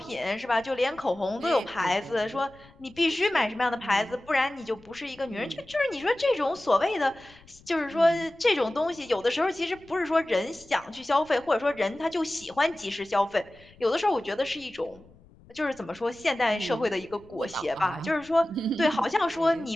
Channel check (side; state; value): left; noise; rumble, 26 dB below the sound